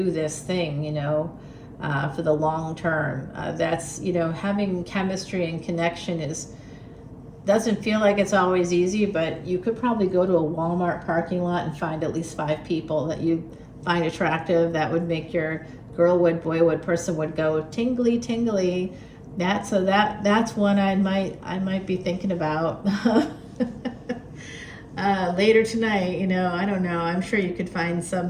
this thing, you know, for the long term. That's, you know, having chemistry and connection doesn't feel like it's always easy, but you could probably go to a Walmart parking lot and find at least 5 people that you find attractive that would make your girl wood, boy wood, person would go tingly, tingly. That's one I might be thinking about later tonight. You know, I don't know. I'm sure you could find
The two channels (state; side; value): identical; both; correlation 1.00